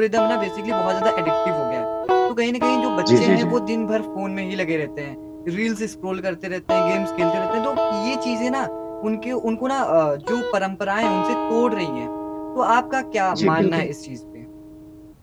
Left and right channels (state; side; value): identical; both; correlation 1.00